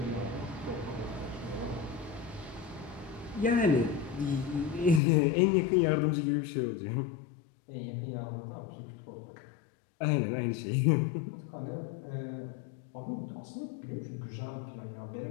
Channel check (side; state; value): right; drops out; at 5.0 s